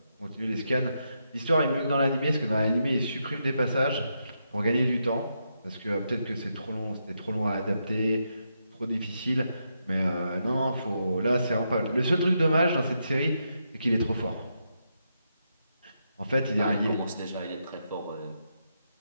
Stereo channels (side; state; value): both; inverted; correlation -0.82